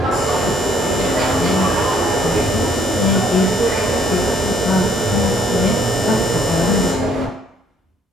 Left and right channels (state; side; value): normal; both; correlation 0.65